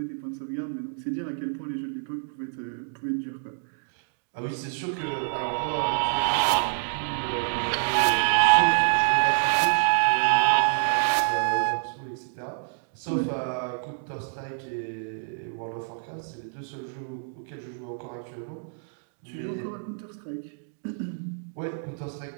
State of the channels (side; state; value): left; silent; digital silence